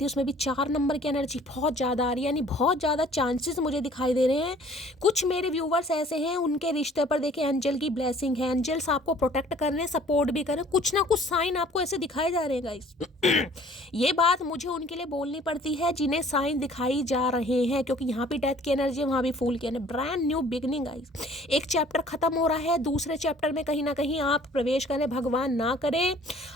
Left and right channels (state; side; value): normal; both; correlation 0.54